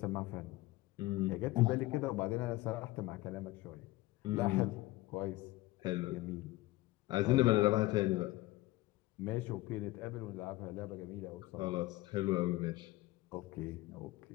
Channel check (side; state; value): right; quieter; 18.4 dB